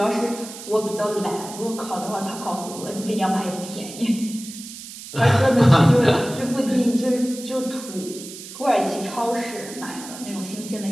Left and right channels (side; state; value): right; noise; hiss, 13 dB below the sound